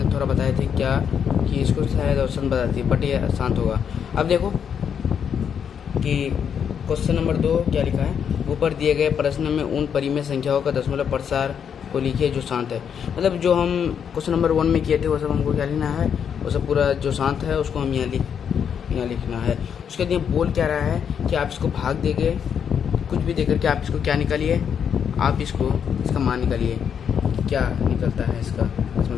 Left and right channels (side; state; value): right; quieter; 7.7 dB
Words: थोड़ा बताए थे क्या कि इसको शायद ऑप्शन बताती है, बट ये आसान होगा। अब देखो कि क्वेश्चन नंबर 2 क्या लिखा है। ऊपर दिए गए प्रश्न में उन परिमेय संख्याओं का दशमलव प्रसार को लिखिए जो शांत है। मतलब जो हम क्वेश्चन नंबर 1 में किए थे वो सब हमको क्या लिखना है, वो सब पूरा जो शांत है उसको हम यहाँ लिखना है। उसके लिए बोल क्या रहा है कि आप इसको भाग देंगे, कुछ भी देकर के आप इसको क्या निकालिए, आप इसका मान निकालिए, क्या निकलता है इसका